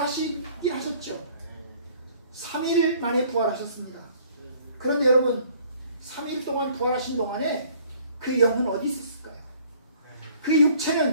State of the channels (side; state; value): both; inverted; correlation -0.57